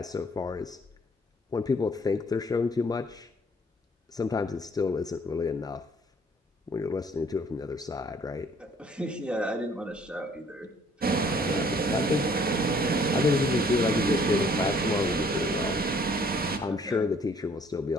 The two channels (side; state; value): both; normal; correlation 0.60